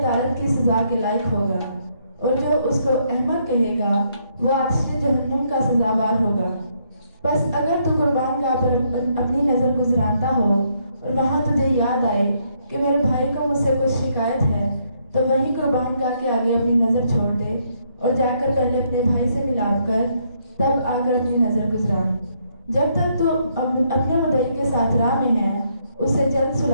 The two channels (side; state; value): both; inverted; correlation -0.73